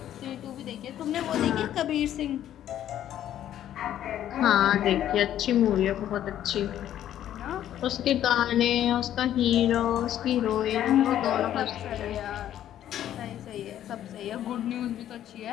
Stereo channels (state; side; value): quieter; right; 11.4 dB